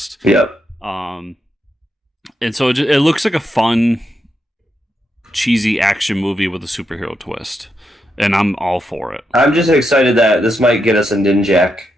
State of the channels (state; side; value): normal; both; correlation 0.83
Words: Yep. And so it looks like a fun, cheesy action movie with a superhero twist. And I'm all for it. I'm just excited that this might get us a Ninjak